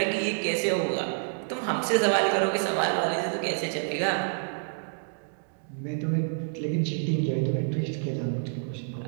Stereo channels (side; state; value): left; silent; digital silence